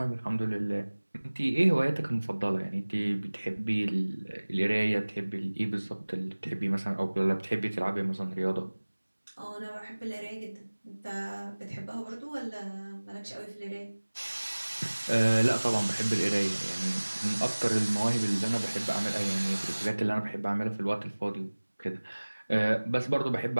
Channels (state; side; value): inverted; both; correlation -1.00